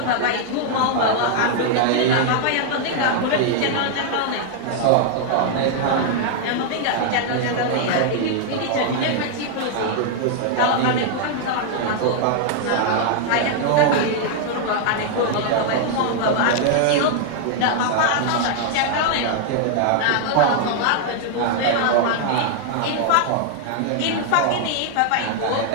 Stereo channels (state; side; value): different; both; correlation -0.01